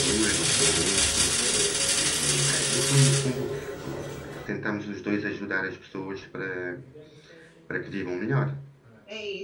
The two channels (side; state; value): both; identical; correlation 1.00